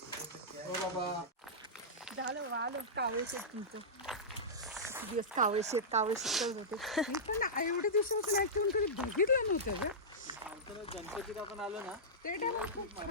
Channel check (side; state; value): both; normal; correlation -0.13